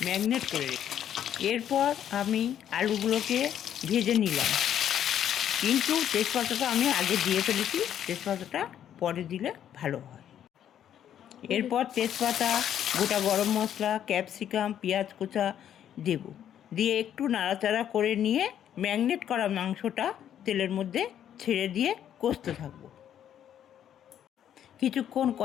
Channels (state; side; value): quieter; right; 10.1 dB